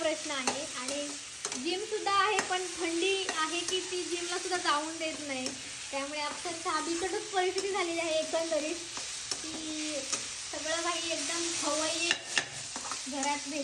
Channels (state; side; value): identical; both; correlation 1.00